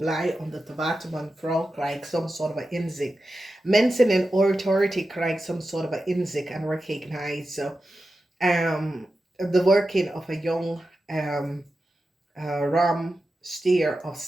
omdat de watermanvrouw krijgt some sort of inzicht. Mensen in authority krijgen some sort of inzicht and recognize the working of a young ram, steer of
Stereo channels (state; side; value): normal; both; correlation 0.92